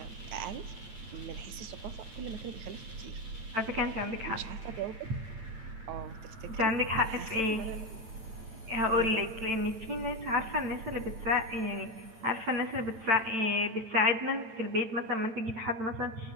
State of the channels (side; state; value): left; late; 9.0 ms